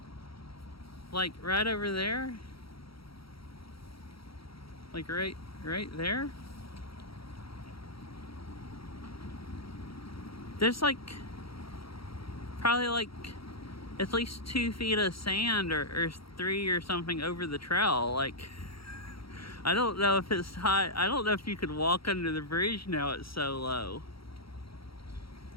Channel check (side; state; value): right; late; 0.75 ms